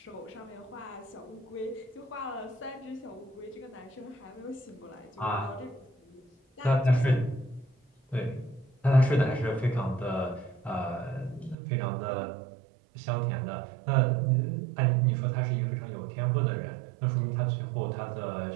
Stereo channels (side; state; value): left; drops out; at 11.6 s